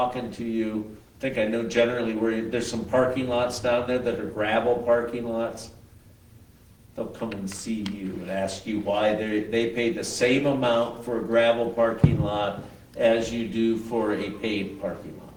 to you. I think I know generally where there's some parking lots down there that are gravel parking lots. They'll come and see you and ask you why they pay the same amount for a gravel parking lot as you do for a paved parking lot.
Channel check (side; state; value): both; identical; correlation 1.00